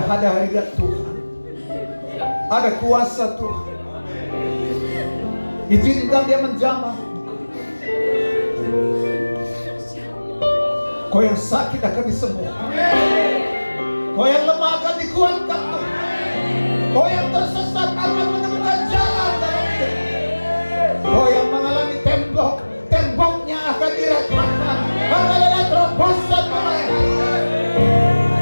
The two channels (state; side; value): inverted; both; correlation -1.00